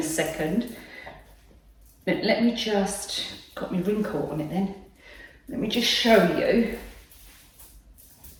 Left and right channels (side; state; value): both; identical; correlation 1.00